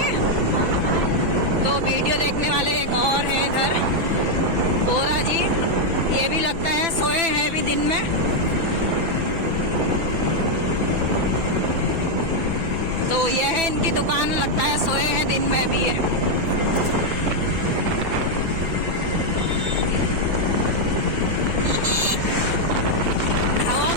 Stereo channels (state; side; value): late; left; 6.1 ms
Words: तो वीडियो देखने वाले एक और हैं इधर, बोरा जी। ये भी लगता है सोए हैं अभी दिन में। तो ये है इनकी दुकान, लगता है सोए हैं दिन में भी ये। हवा